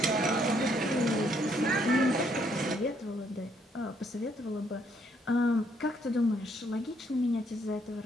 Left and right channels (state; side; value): normal; both; correlation 0.70